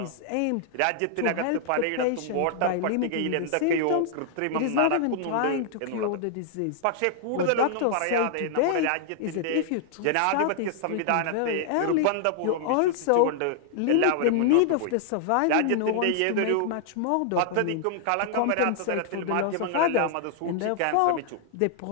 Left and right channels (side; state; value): both; different; correlation -0.01